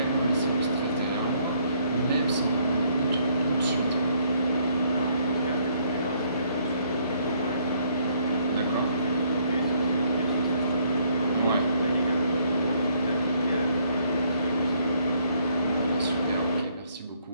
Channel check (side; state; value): both; inverted; correlation -0.68